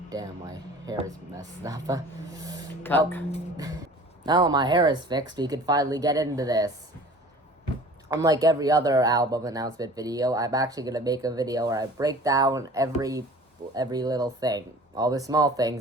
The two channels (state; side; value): normal; both; correlation 0.44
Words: damn, my hair is messed up. Cut. Now my hair is fixed, we can finally get into this. Unlike every other album announcement video, I'm actually gonna make a video where I break down every little thing, all the small